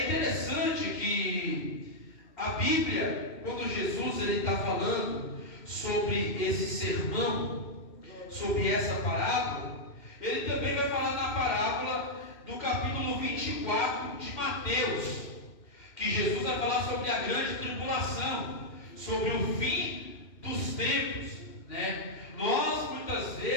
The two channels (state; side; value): late; right; 2.1 ms